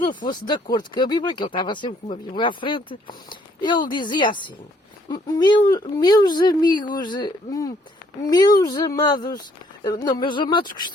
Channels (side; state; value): both; normal; correlation 0.65